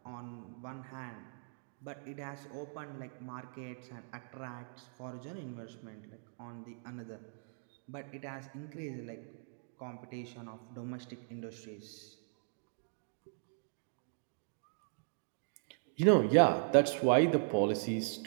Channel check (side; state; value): left; silent; digital silence